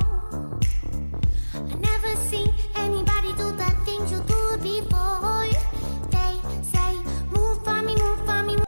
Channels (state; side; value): inverted; both; correlation -1.00